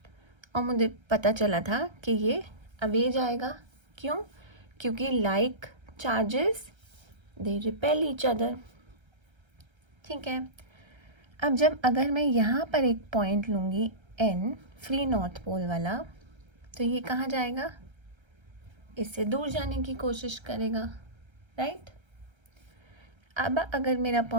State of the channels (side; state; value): left; late; 1.3 ms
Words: और मुझे पता चला था कि ये अवे जाएगा। क्यों? क्योंकि like charges they repel each other. ठीक है, अब जब अगर मैं यहाँ पर एक पॉइंट लूँगी एन फ्री नॉर्थ पोल वाला, तो ये कहाँ जाएगा? इससे दूर जाने की कोशिश करेगा, राइट। अब अगर मेरा